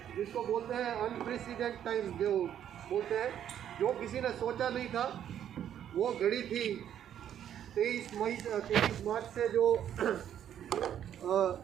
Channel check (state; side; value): quieter; left; 10.1 dB